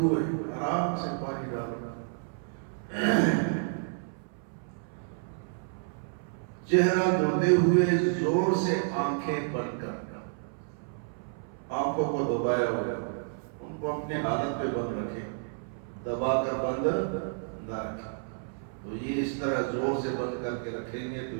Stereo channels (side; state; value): left; silent; 58 dB below the other